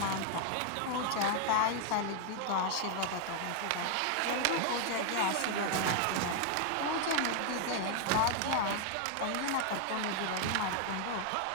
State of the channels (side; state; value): both; different; correlation 0.00